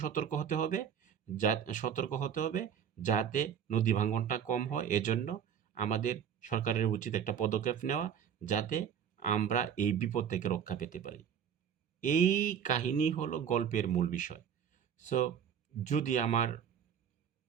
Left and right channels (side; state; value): left; quieter; 8.2 dB